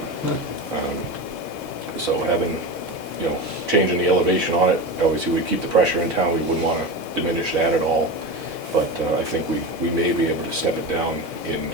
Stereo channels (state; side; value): late; right; 2.1 ms